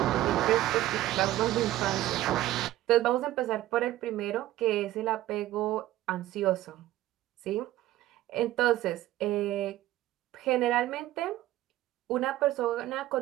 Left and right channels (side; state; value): left; quieter; 14.9 dB